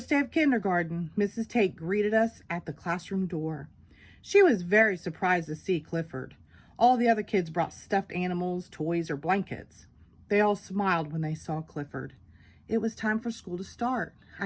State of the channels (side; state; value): both; identical; correlation 1.00